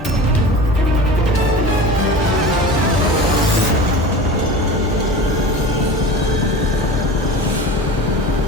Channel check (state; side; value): normal; both; correlation 0.34